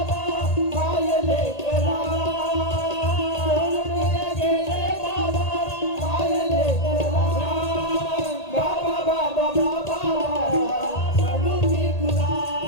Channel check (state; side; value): late; right; 1.8 ms